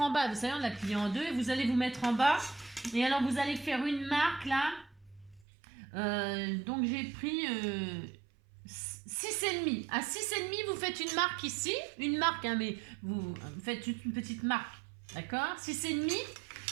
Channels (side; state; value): left; drops out; at 5.5 s